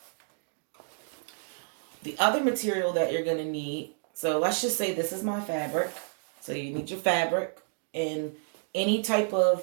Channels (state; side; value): silent; left; digital silence